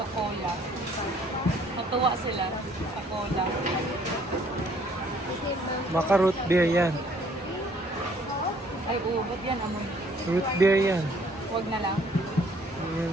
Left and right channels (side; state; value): both; normal; correlation 0.61